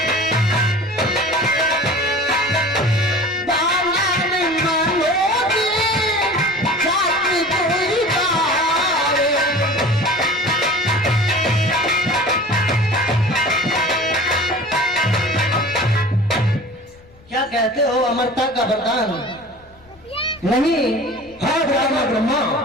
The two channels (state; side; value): noise; left; rumble, 27 dB below the sound